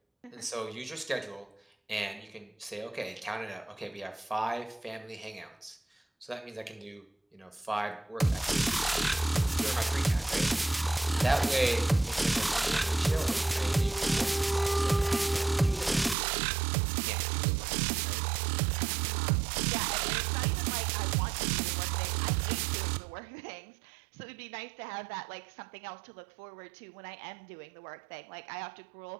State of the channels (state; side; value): drops out; left; at 16.2 s